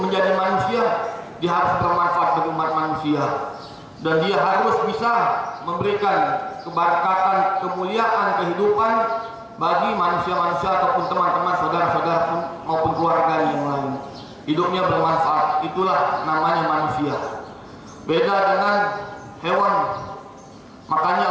menjadi manusia, dia harus bermanfaat bagi umat manusia, dan dia harus bisa memberikan keberkatan, kemuliaan, kehidupan bagi manusia-manusia ataupun teman-teman, saudara-saudara maupun keluarga yang lain. Hidupnya bermanfaat, itulah namanya manusia. Beda dengan hewan. Makanya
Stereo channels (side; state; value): both; identical; correlation 1.00